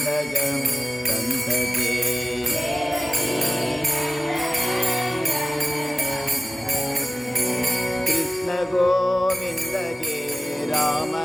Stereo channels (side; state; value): both; normal; correlation 0.96